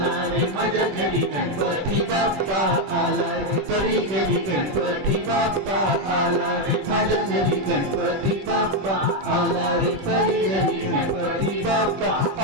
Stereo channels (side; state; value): left; late; 21 ms